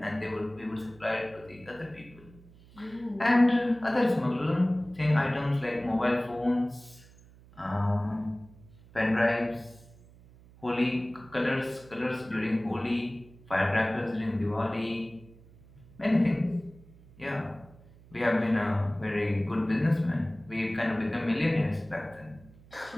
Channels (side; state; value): right; noise; hum, 24 dB below the sound